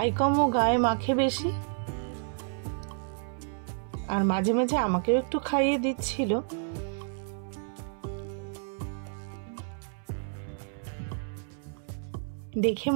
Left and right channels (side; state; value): left; silent; 58 dB below the other